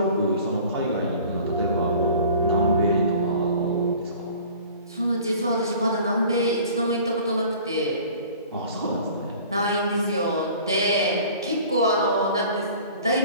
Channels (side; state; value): both; inverted; correlation -0.46